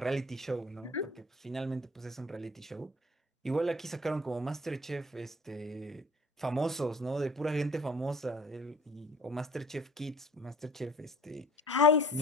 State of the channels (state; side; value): normal; both; correlation 0.50